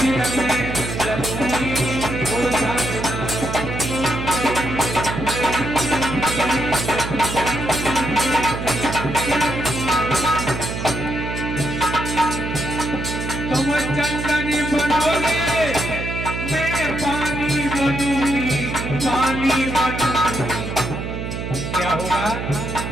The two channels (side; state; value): right; noise; hum, 5 dB below the sound